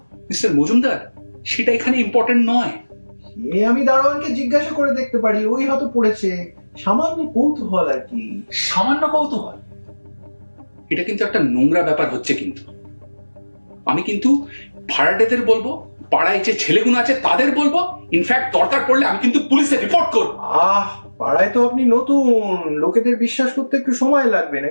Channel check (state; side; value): inverted; both; correlation -1.00